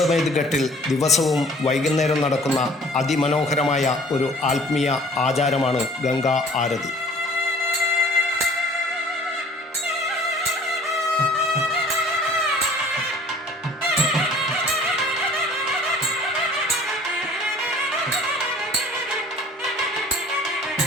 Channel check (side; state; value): both; normal; correlation 0.51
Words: ഘട്ടിൽ ദിവസവും വൈകുന്നേരം നടക്കുന്ന അതിമനോഹരമായ ഒരു ആത്മീയ ആചാരമാണ് ഗംഗാ ആരതി.